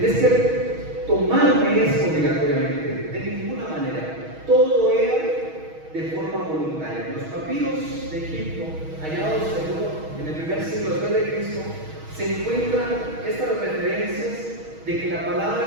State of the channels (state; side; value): late; left; 6.3 ms